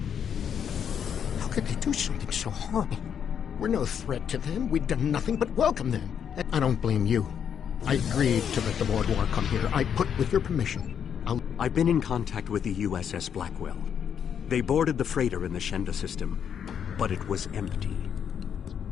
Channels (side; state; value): right; quieter; 8.1 dB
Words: How could they do something so horrible? We're no threat to them. We've done nothing but welcome them. I don't blame you. I agreed to let the Vaudouar come here. I put with your permission. I've been in contact with the USS Blackwell. They boarded the freighter in the Shenda system, but it was empty.